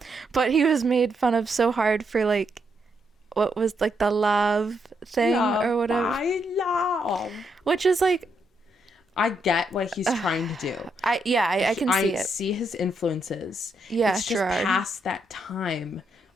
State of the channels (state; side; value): normal; both; correlation 0.78